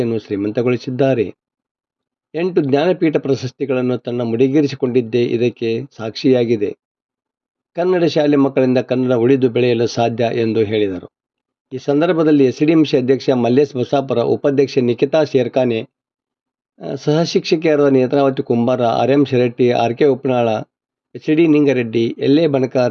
ಶ್ರೀಮಂತಗೊಳಿಸಿದ್ದಾರೆ. 8 ಜ್ಞಾನಪೀಠ ಪ್ರಶಸ್ತಿಗಳನ್ನು ತನ್ನ ಮುಡಿಗೇರಿಸಿಕೊಂಡಿದ್ದೇ ಇದಕ್ಕೆ ಸಾಕ್ಷಿಯಾಗಿದೆ. ಕನ್ನಡ ಶಾಲೆ ಮಕ್ಕಳಿಂದ ಕನ್ನಡ ಉಳಿದು ಬೆಳೆಯಲು ಸಾಧ್ಯ ಎಂದು ಹೇಳಿದರು. ಈ ಸಂದರ್ಭದಲ್ಲಿ SDMC ಅಧ್ಯಕ್ಷ ಮಲ್ಲೇಶ್ ಬಸಾಪುರ, ಉಪಾಧ್ಯಕ್ಷೆ ನಿಖಿತಾ ಶೇರ್ಖಾನೆ, ಸಹ ಶಿಕ್ಷಕಿಯರಾದ ನೇತ್ರಾವತಿ ಕುಂಬಾರ, RM Shiratti, RK ಉಪ್ನಾಳ, HD ನಿಂಗರೆಡ್ಡಿ, LA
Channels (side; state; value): both; identical; correlation 1.00